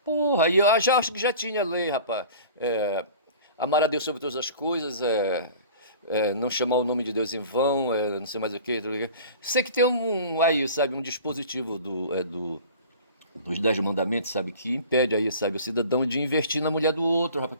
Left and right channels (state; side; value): inverted; both; correlation -0.42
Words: Porra, e eu já acho que já tinha lei, rapaz. Amar a Deus sobre todas as coisas, não chamar o nome de Deus em vão, não sei mais o que. Sei que tem aí, sabe? Um dispositivo dos 10 mandamentos, sabe, que impede aí, sabe, o cidadão de investir na mulher do outro, rapaz,